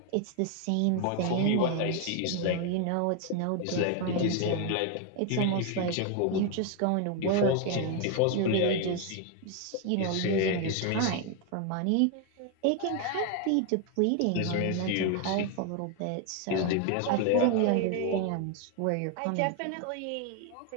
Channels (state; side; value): different; both; correlation 0.01